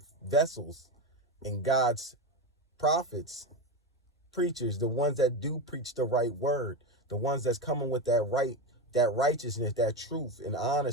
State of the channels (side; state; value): both; normal; correlation 0.16